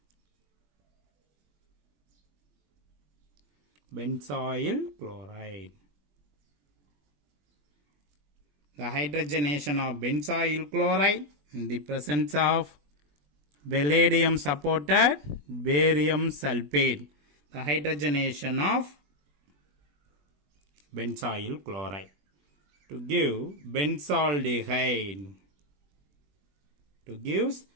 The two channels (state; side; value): late; left; 21 ms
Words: The hydrogenation of benzoyl chloride in the presence of palladium supported barium sulfate. The hydrogenation of benzoyl chloride to give benzaldehyde.